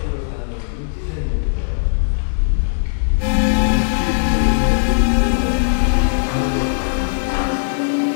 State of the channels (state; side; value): silent; right; 66 dB below the other